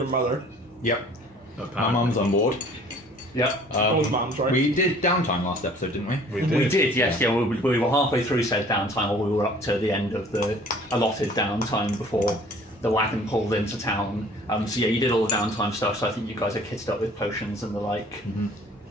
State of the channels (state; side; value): normal; both; correlation 0.52